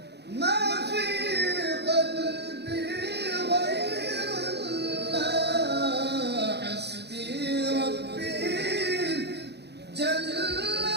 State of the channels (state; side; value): late; left; 0.49 ms